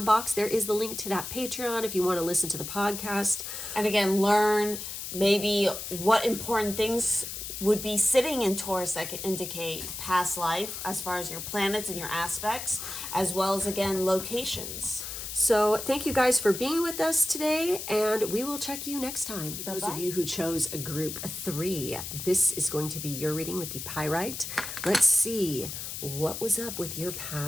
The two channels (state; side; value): noise; left; hiss, 7 dB below the sound